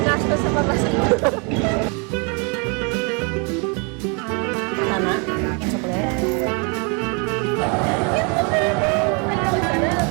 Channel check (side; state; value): left; quieter; 34.1 dB